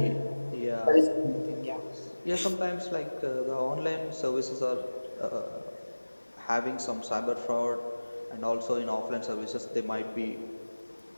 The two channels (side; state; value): both; inverted; correlation -1.00